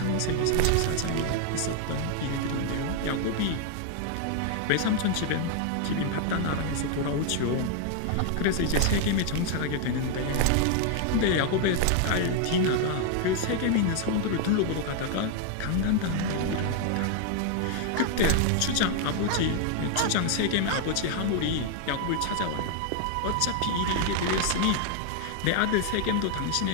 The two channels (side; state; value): both; different; correlation 0.00